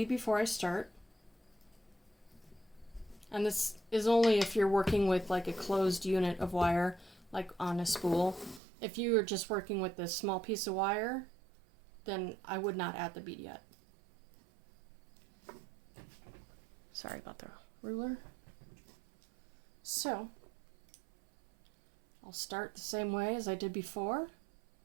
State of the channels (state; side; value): drops out; left; at 8.6 s